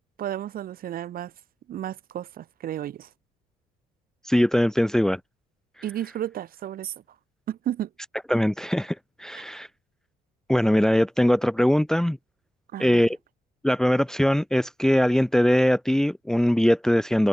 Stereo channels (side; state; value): both; normal; correlation 0.96